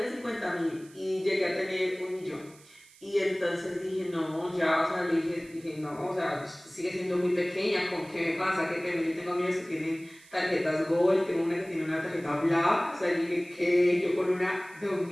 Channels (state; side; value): noise; right; hiss, 25 dB below the sound